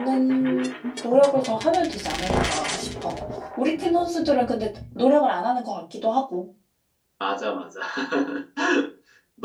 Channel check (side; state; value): both; identical; correlation 1.00